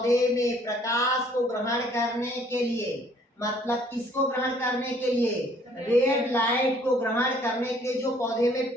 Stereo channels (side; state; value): both; normal; correlation 0.60